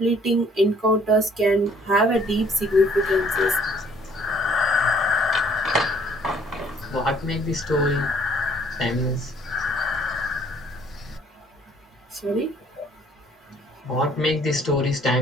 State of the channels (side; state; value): both; normal; correlation 0.60